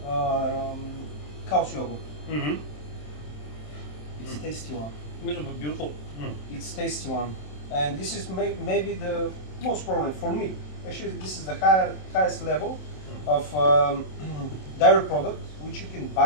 cow's yogurt. Mm-hmm. It's tasty one. It was beautiful. It's tasty one, and this is maybe the most problem for me. Actually, this is the highest level of dairy product which you can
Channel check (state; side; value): late; right; 27 ms